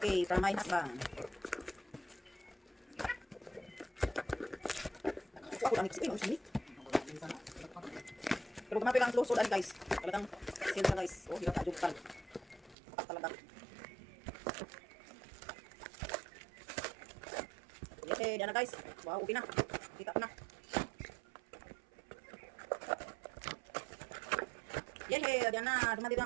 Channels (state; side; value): drops out; left; at 12.8 s